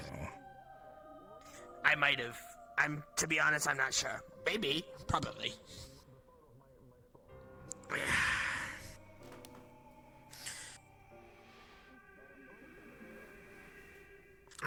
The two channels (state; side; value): identical; both; correlation 1.00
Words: I might have. To be honest, I'm not sure. Maybe. Probably.